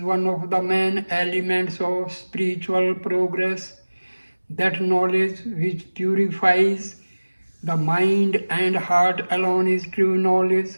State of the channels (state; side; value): inverted; both; correlation -1.00